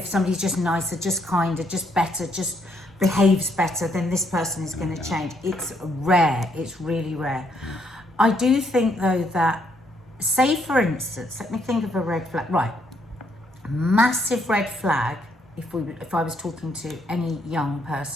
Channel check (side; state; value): both; normal; correlation 0.72